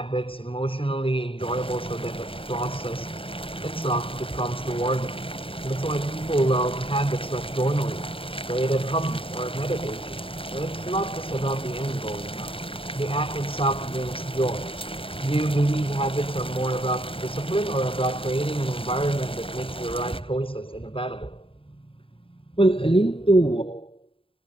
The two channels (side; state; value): right; late; 0.26 ms